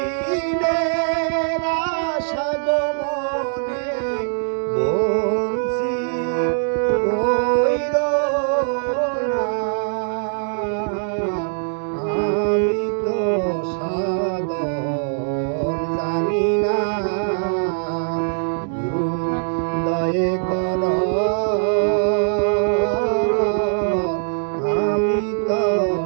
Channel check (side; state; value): left; silent; digital silence